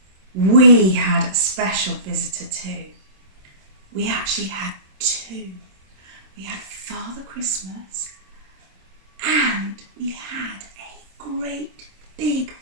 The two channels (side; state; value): left; late; 26 ms